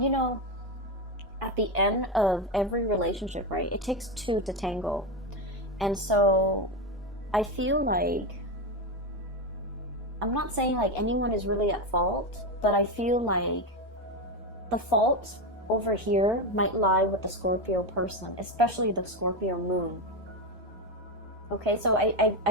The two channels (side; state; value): both; normal; correlation 0.13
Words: at the end of every relationship, right, it takes two to tango. And so I feel like I'm not saying like anyone is really at fault, but I feel like the fault over here might lie with the Scorpio person, especially the Scorpio moon. Okay, so